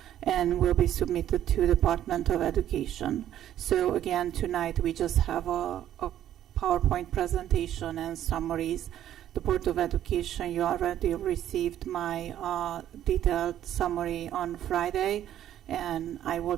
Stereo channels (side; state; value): left; quieter; 11.5 dB